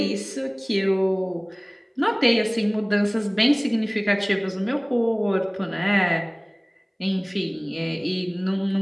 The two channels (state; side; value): identical; both; correlation 1.00